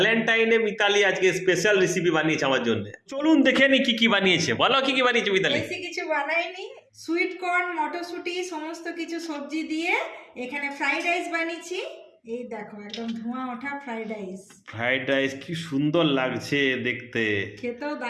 মিতালি আজকে special recipe বানিয়েছে আমার জন্য। চলুন দেখে নি কি কি বানিয়েছে। বলো কি কি বানিয়েছে মিতালি। বেশি কিছু বানাইনি, সুইট কর্ন মটরশুঁটি সমস্ত কিছু সবজি দিয়ে এখানে ফ্রাইড রাইস বানিয়েছি। এই দেখো একদম ধোঁয়া ওঠা ফ্রাইড রাইস। ফ্রাইড রাইস কি সুন্দর লাগছে দেখতে, খেতেও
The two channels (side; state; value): both; identical; correlation 1.00